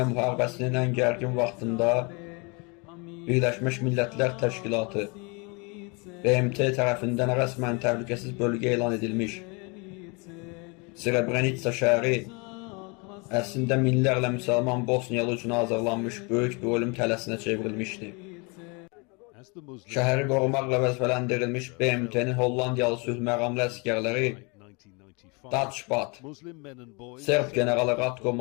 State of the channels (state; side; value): quieter; right; 30.8 dB